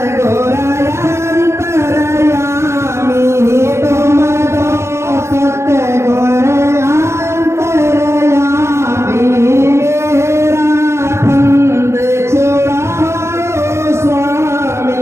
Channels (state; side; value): late; left; 0.13 ms